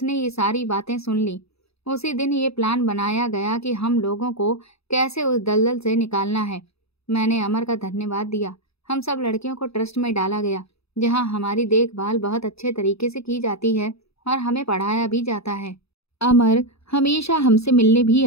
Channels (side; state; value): right; late; 0.78 ms